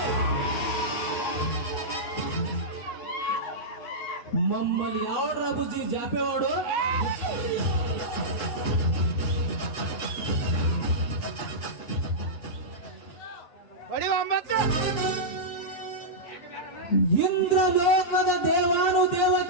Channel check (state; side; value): late; right; 8.4 ms